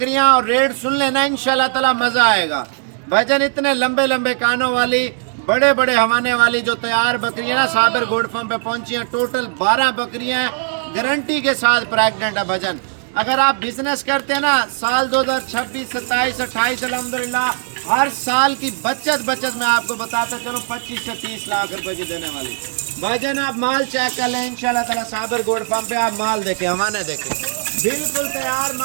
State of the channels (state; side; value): silent; left; digital silence